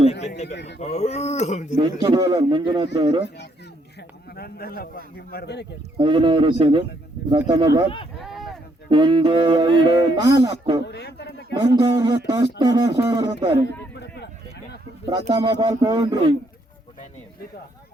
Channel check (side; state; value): both; normal; correlation 0.72